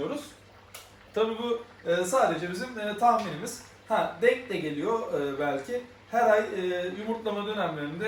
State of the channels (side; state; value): both; identical; correlation 1.00